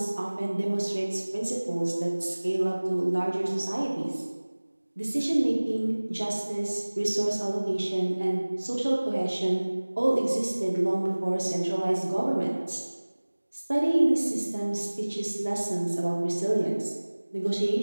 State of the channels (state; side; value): inverted; both; correlation -1.00